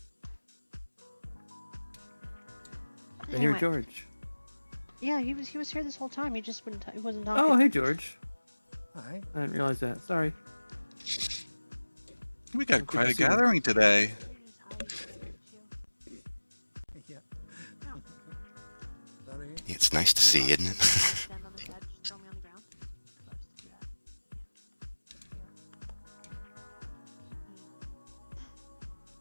I hear Anyway. George. Yeah, he was here this whole time. He just he wasn't talking. Oh, hey, George. Hi. I didn't realize that. Sorry. We got quite a see you. gathering today. Yeah. It's nice to see, isn't it?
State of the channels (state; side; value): inverted; both; correlation -1.00